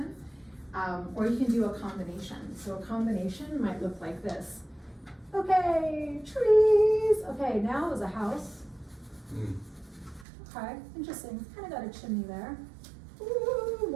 Or you can do a combination. So a combination might look like this. Okay, trees. Okay, now is a house. Okay, interesting. Kind of got a chimney there. Ooh,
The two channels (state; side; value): drops out; left; at 10.2 s